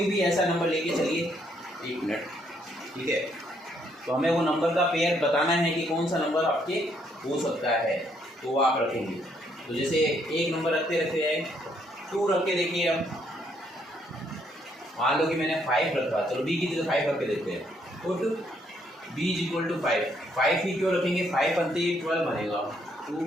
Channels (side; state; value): both; normal; correlation 0.71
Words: भी ऐसा नंबर लेके चलिए, 1 मिनट, ठीक है। तो हमें वो नंबर का पेयर बताना है कि कौन सा नंबर आपके हो सकता है, तो वो आप रखेंगे। तो जैसे एक नंबर रखते रखते हैं 2 रख के देखिए। अब मान लो कि मैंने 5 रखा, चलो b की जगह 5 रख के देखते हैं। तो b=5, 5 ही क्यों रखेंगे, 5 बनते ही 12 बनेगा, तो